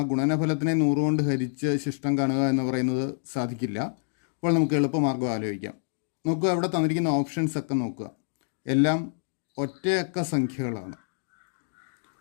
ഗുണനഫലത്തിനെ 100 കൊണ്ട് ഹരിച്ച് ശിഷ്ടം കാണുക എന്ന് പറയുന്നത് സാധിക്കില്ല. അപ്പോൾ നമുക്ക് എളുപ്പമാർഗ്ഗം ആലോചിക്കാം. നോക്കുക, ഇവിടെ തന്നിരിക്കുന്ന ഓപ്ഷൻസ് ഒക്കെ നോക്കുക, എല്ലാം ഒറ്റയക്ക സംഖ്യകളാണ്.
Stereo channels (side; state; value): right; silent; digital silence